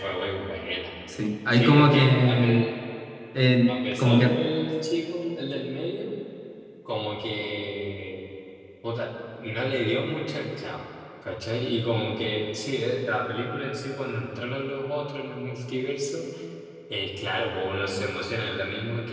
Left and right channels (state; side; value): identical; both; correlation 1.00